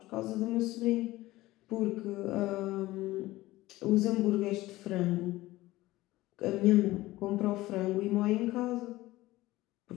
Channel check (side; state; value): right; quieter; 17.8 dB